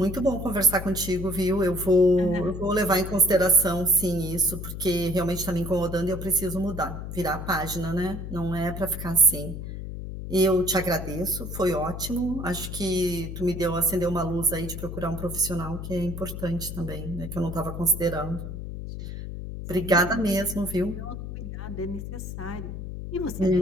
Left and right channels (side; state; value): left; noise; hum, 7 dB below the sound